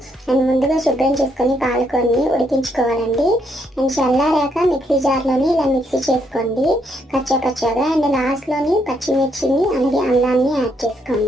అండ్ ముందుగా శుభ్రం చేసుకొని పాలకొన్ని ఉడికించుకోవాలండి. అండ్ చల్లారాక మిక్సీ జార్లోని ఇలా మిక్సీ చేసుకోండి కచ్చా. అండ్ లాస్ట్లోని పచ్చిమిర్చిని అలాగే అల్లాన్ని యాడ్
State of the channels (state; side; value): normal; both; correlation 0.74